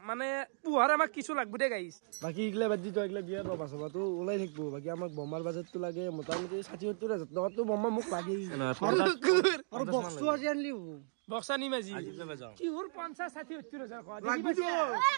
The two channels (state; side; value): silent; left; digital silence